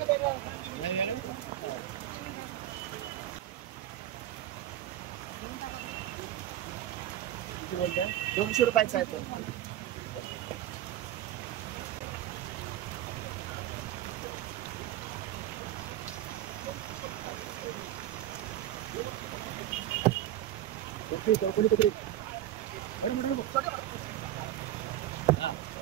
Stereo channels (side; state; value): left; quieter; 12.7 dB